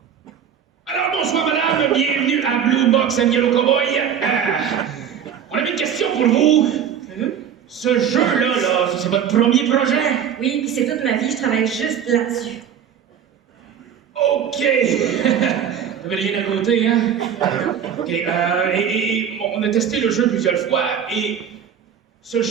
Alors bonsoir madame, bienvenue à Blue Box and Yellow Cowboy. On avait une question pour vous. Ce jeu-là, c'est votre premier projet? Oui, puis c'est toute ma vie, je travaille juste là-dessus. OK. Vous n'avez rien à côté, hein? OK. On a testé le jeu plusieurs fois, et ce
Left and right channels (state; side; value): quieter; left; 8.3 dB